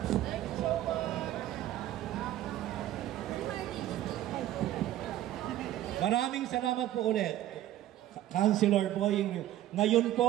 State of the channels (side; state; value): left; quieter; 13.3 dB